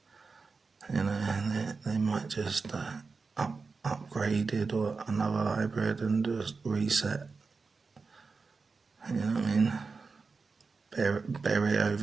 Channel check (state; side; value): quieter; left; 4.5 dB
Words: you know, they might just upgrade it or another hybrid and just reset. You know what I mean? Bury